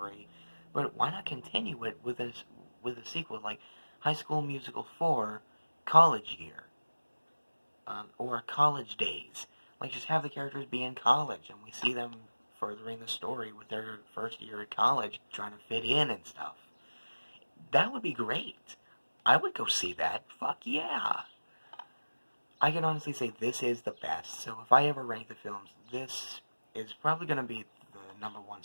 but why not continue it with a sequel, like High School Musical 4, College Year, or College Days. Like, just have the characters be in college, and we see them furthering the story with their first year at college, trying to fit in and stuff. That would be great. I would go see that. Fuck yeah. I can honestly say this is the best. So if I ever rank the films, this is probably going to be the number 1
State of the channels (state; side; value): inverted; both; correlation -1.00